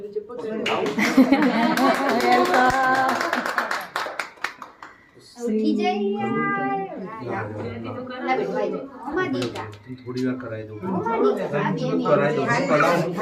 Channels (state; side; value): identical; both; correlation 1.00